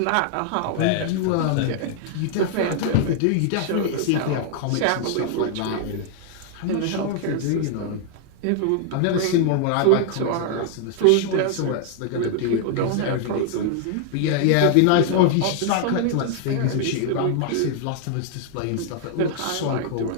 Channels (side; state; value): both; different; correlation 0.00